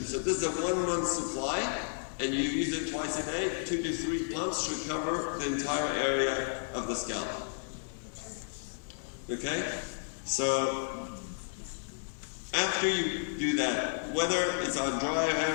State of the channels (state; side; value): silent; right; digital silence